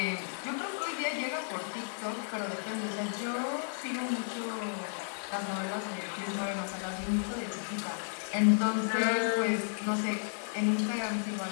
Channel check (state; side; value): silent; right; digital silence